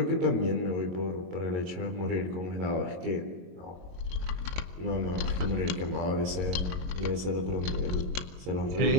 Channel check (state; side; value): late; left; 22 ms